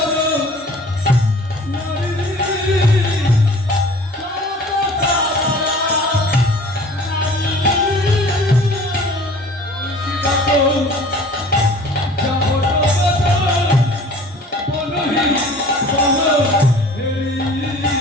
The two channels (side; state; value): both; normal; correlation 0.47